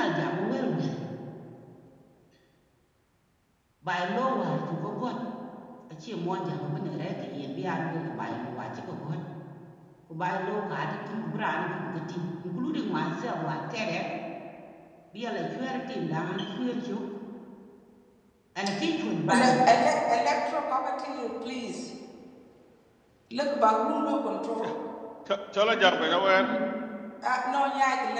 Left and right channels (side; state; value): both; identical; correlation 1.00